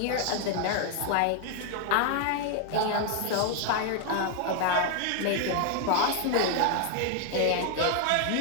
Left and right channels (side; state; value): both; different; correlation 0.00